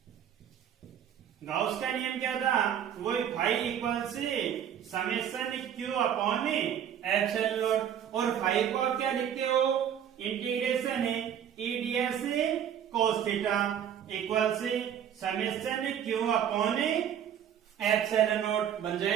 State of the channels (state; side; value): quieter; left; 9.3 dB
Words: गाउस का नियम क्या था, वही फाई इक्वल से summation Q upon epsilon not, और फाई को आप क्या लिखते हो, इंटीग्रेशन है ईडीएस कोस थीटा इक्वल से summation Q upon epsilon not बन